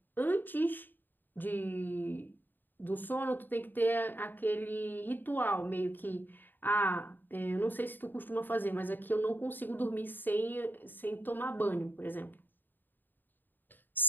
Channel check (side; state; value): right; late; 0.091 ms